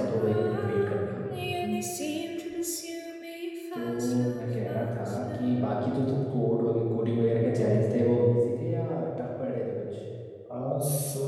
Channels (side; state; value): both; identical; correlation 1.00